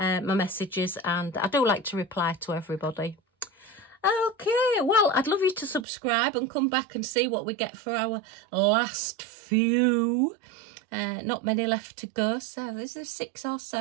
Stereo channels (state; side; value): drops out; left; at 5.9 s